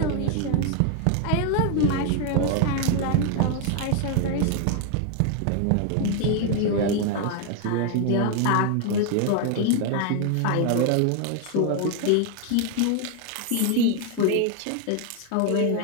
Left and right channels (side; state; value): both; different; correlation 0.00